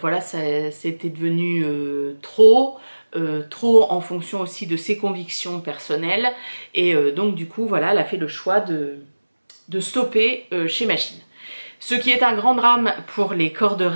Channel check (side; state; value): both; inverted; correlation -1.00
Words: c'était devenu trop en fonction aussi de ses convictions personnelles. Et donc du coup, voilà, elle a fait le choix de stopper chez Machine. Ce qui est un grand drame pour les corps de